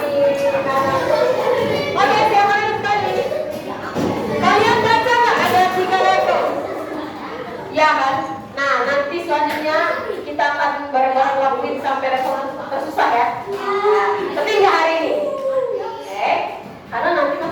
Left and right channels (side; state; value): both; identical; correlation 1.00